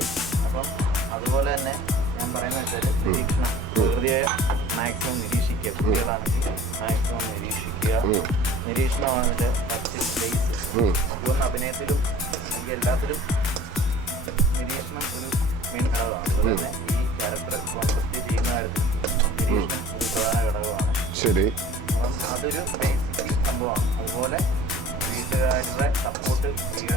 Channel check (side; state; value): both; normal; correlation 0.47